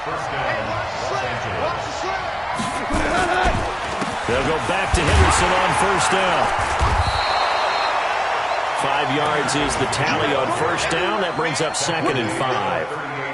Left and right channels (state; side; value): identical; both; correlation 1.00